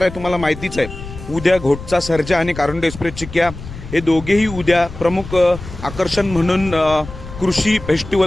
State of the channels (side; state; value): left; noise; rumble, 13 dB below the sound